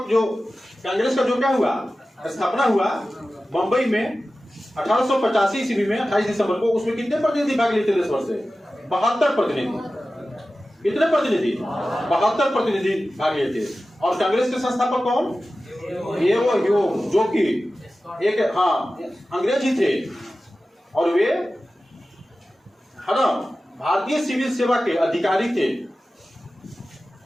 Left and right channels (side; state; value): both; normal; correlation 0.95